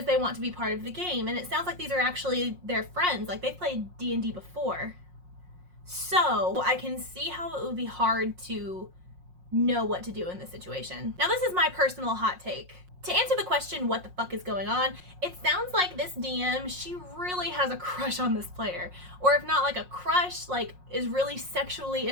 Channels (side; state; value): left; late; 5.5 ms